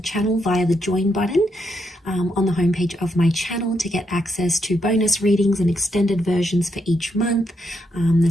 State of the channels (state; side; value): normal; both; correlation 0.79